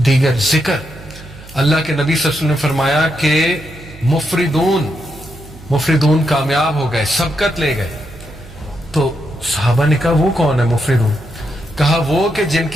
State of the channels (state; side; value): noise; right; hum, 19 dB below the sound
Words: دیگر ذکر. اللہ کے نبی صلی اللہ علیہ وسلم نے فرمایا کہ مفردون کامیاب ہو گئے, سبقت لے گئے. تو صحابہ نے کہا وہ کون ہے مفردون؟ کہا وہ کہ جن